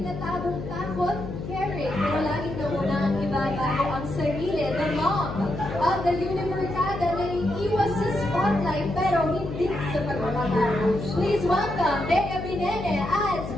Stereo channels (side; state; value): left; noise; hum, 8 dB below the sound